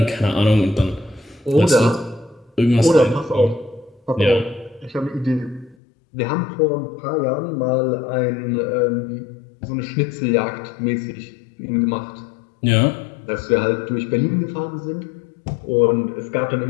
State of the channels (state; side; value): drops out; right; at 5.8 s